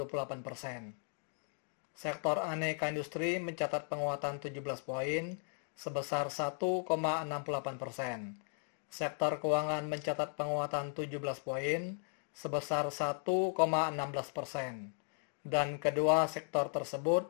Sektor aneka industri mencatat penguatan 17 poin, sebesar 1,68%. Sektor keuangan mencatat penguatan 17 poin, sebesar 1,16%. Dan kedua sektor tersebut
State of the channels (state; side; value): silent; right; 53 dB below the other